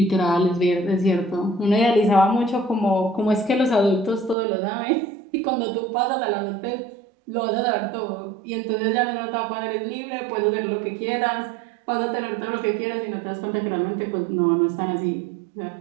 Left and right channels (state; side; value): drops out; left; at 4.4 s